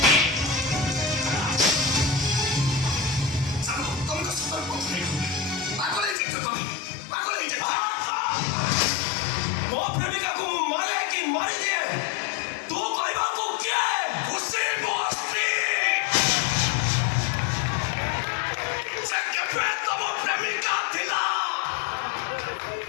ତମକୁ ସତର୍କ ପାଗଳ ହେଇଯାଇଛ, ତମେ ପାଗଳ ହେଇଯାଇଛ। ମୋ ପ୍ରେମିକାକୁ ମୁଁ ମାରେ କି ମାରିଦିଏ ତୁ କହିବାକୁ କିଏ? ଖୁସି ମୋ ସ୍ତ୍ରୀ, ସେ କେବେ ତମ ପ୍ରେମିକା ଥିଲା,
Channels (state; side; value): drops out; right; at 6.2 s